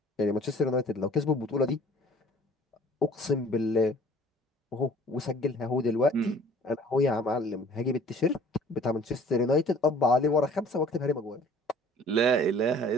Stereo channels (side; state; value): both; normal; correlation 0.51